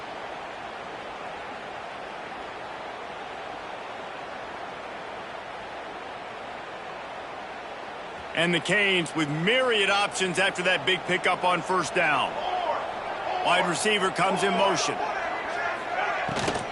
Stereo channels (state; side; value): identical; both; correlation 1.00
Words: And the Canes with myriad options after that big pickup on 1st down. Wide receiver comes in motion.